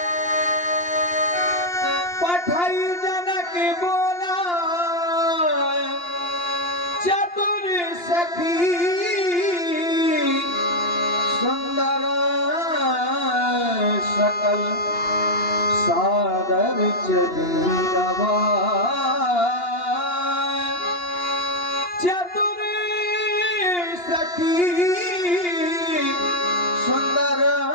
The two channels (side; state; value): right; late; 2.8 ms